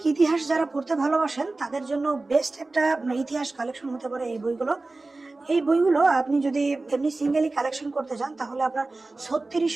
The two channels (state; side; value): quieter; left; 3.3 dB